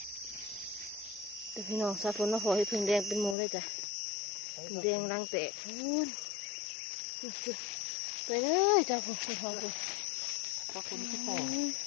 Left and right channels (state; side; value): drops out; right; at 3.4 s